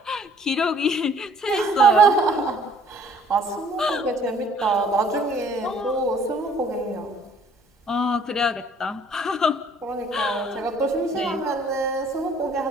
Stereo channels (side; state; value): both; normal; correlation 0.58